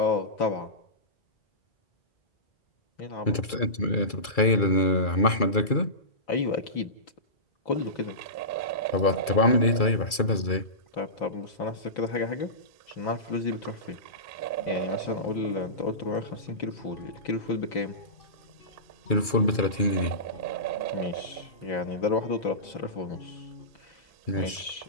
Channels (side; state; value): right; late; 2.3 ms